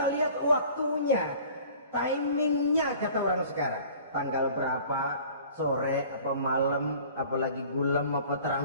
lihat waktunya, timingnya kata orang sekarang. Tanggal berapa, sore apa malam, apalagi gulam apa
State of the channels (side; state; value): both; inverted; correlation -0.48